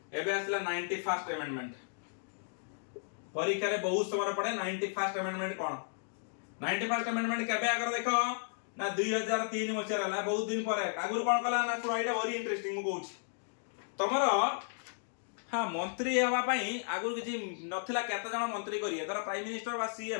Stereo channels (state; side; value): silent; right; digital silence